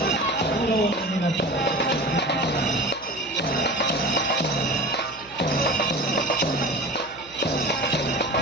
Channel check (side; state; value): right; noise; hum, 25 dB below the sound